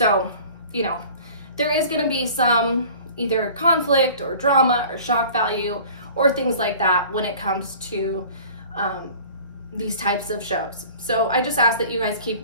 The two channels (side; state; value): both; inverted; correlation -0.45